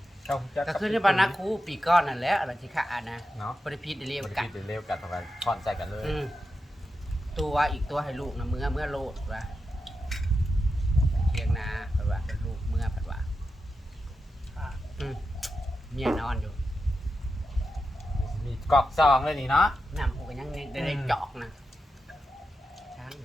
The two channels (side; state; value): both; normal; correlation 0.89